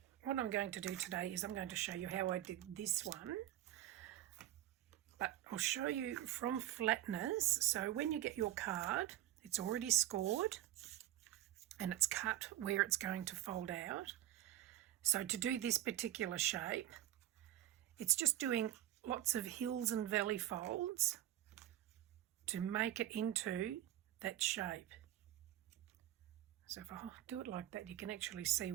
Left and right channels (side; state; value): left; quieter; 13.3 dB